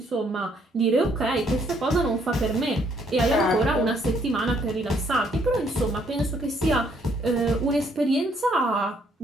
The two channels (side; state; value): both; normal; correlation 0.68